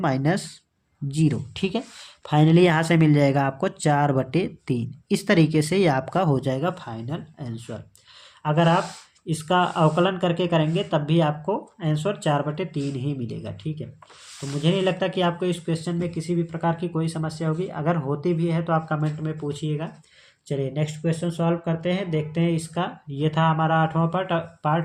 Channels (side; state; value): both; identical; correlation 1.00